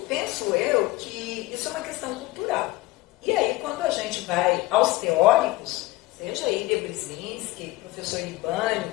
eu que isso é uma questão cultural. E aí, quando a gente vai aos teóricos, seja Ilya Brzezinski, professor Libânio,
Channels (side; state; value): right; quieter; 18.9 dB